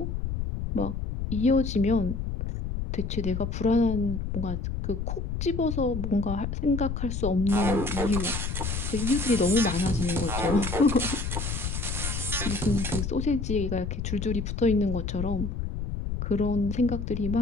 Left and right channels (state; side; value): noise; left; rumble, 3 dB below the sound